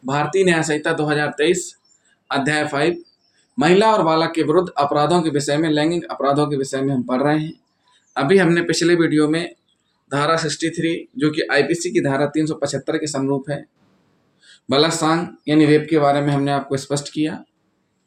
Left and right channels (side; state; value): both; identical; correlation 1.00